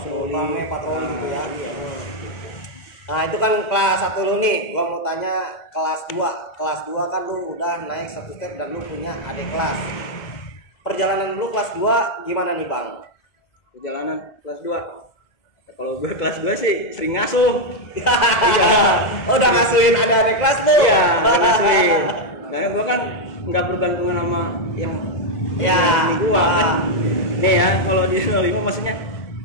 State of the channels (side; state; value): right; late; 2.0 ms